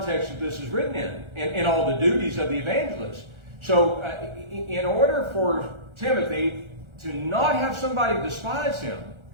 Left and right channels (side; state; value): left; late; 1.4 ms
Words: that this is written in and all the duties of the evangelist. So in order for Timothy to not have somebody despise him,